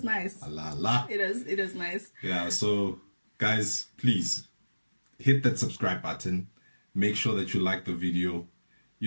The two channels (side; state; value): both; inverted; correlation -1.00